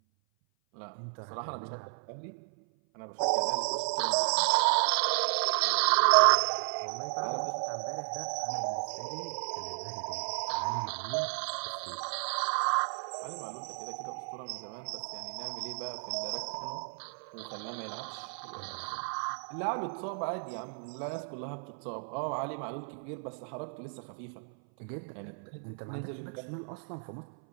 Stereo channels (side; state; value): left; silent; 55 dB below the other